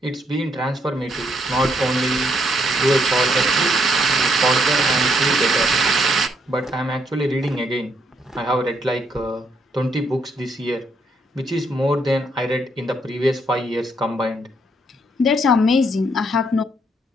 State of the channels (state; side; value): normal; both; correlation 0.73